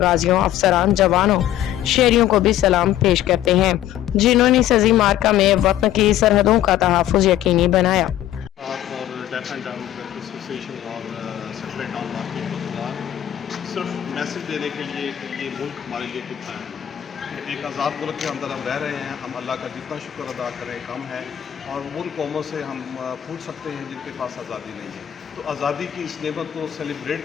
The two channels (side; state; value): right; quieter; 12.2 dB